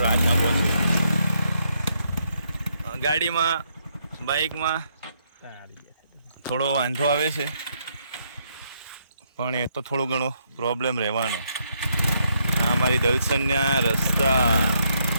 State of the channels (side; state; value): both; inverted; correlation -0.75